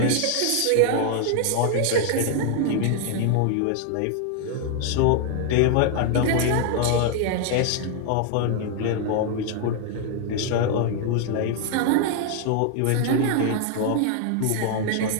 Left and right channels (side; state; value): both; different; correlation 0.00